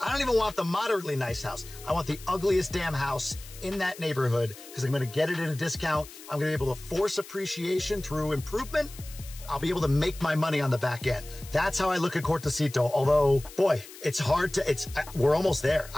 don't even want the moderately nice house. I want the ugliest damn house in that neighborhood because I'm going to get it at a discount. I'm going to be able to force appreciation through improvement. I'll be able to make my money on the back end. That's how I look at Cortecito. Although, boy, it's hard to, we're almost there.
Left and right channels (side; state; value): left; noise; hiss, 17 dB below the sound